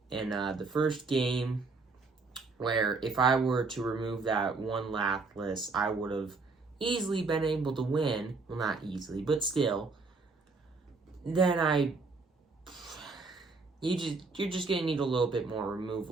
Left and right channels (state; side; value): quieter; left; 4.0 dB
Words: in the first game, where if I were to remove that one Lapras, I would have easily been able to win. Well, not easily, but still. Then you're just going to need a little bit more